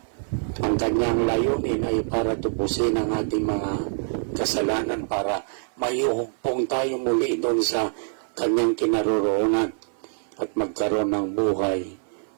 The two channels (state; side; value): silent; left; 57 dB below the other